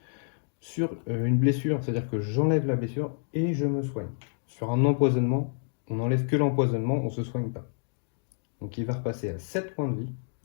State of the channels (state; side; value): silent; right; digital silence